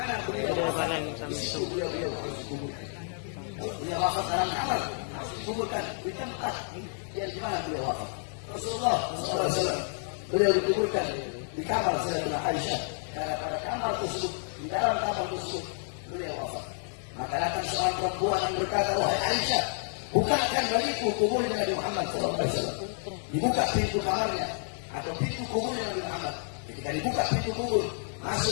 beliau wafat, di situ beliau harus dikuburkan. Kalau beliau wafat dalam kamar, harus dikuburkan di tempat yang di mana beliau wafat. Rasulullah SAW, beliau dikuburkan di kamar Sayyidatina Aisyah. Karena pada kamar tersebut, di dalam kamar tersebut, beliau wafat. Maka datang seorang perempuan yang berkata, wahai Aisyah, bukakan bagiku kuburnya Nabi Muhammad SAW. Dibuka pintu kamarnya atau pintu kuburnya Nabi Muhammad. Ketika dibuka pintu kubur,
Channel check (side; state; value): right; silent; 58 dB below the other